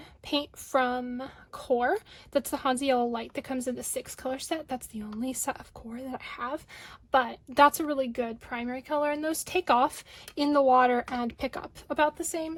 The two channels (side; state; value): both; identical; correlation 1.00